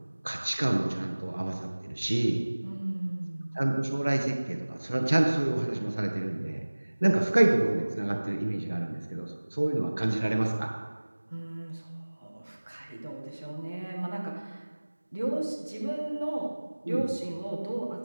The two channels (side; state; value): both; inverted; correlation -1.00